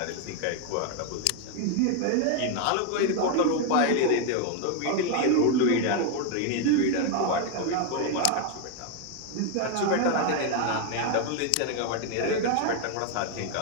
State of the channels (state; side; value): different; both; correlation 0.01